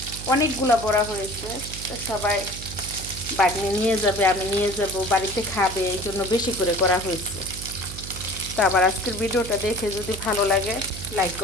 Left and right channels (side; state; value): right; noise; hum, 11 dB below the sound